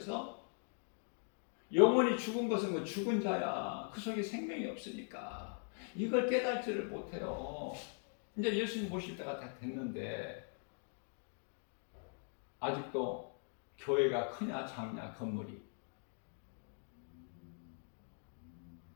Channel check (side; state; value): right; silent; 50 dB below the other